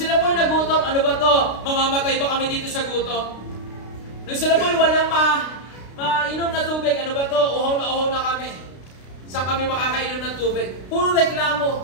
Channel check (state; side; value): late; right; 32 ms